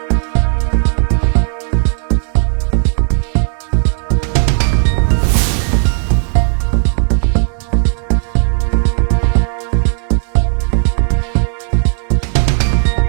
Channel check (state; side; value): silent; left; digital silence